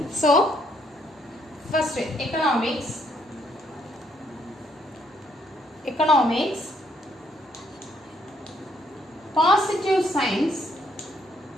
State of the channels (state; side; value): normal; both; correlation 0.70